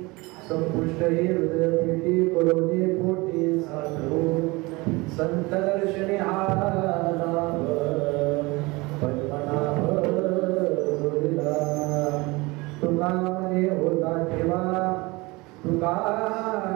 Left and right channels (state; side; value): quieter; left; 23.8 dB